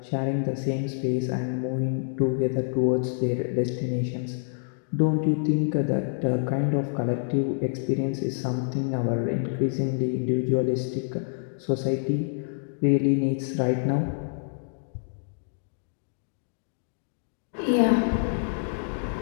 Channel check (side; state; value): right; silent; digital silence